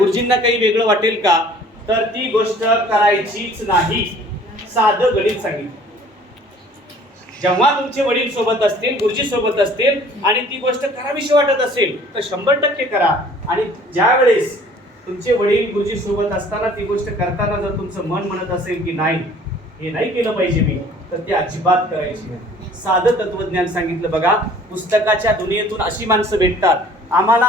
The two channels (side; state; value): both; normal; correlation 0.52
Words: काही वेगळं वाटेल का, तर ती गोष्ट करायचीच नाही. साधं गणित सांगितलं. जेव्हा तुमचे वडील सोबत असतील, गुरुजी सोबत असतील आणि ती गोष्ट करावीशी वाटत असेल तर 100% करा. आणि ज्या वेळेस तुमचे वडील गुरुजी सोबत असताना ती गोष्ट करताना जर तुमचं मन म्हणत असेल की नाही, हे नाही केलं पाहिजे मी, तर ती अजिबात करायची नाही. साधं तत्वज्ञान सांगितलं. बघा, पुस्तकाच्या दुनियेतून अशी माणसं भेटतात, आम्हाला